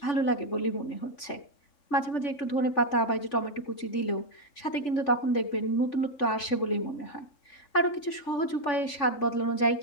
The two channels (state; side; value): late; right; 3.5 ms